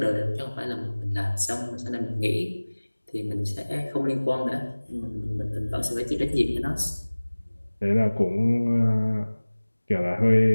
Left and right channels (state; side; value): inverted; both; correlation -1.00